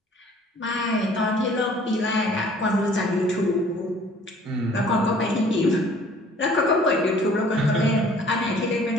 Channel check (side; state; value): both; normal; correlation 0.54